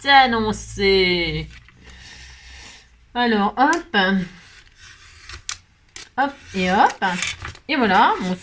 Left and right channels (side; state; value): both; identical; correlation 1.00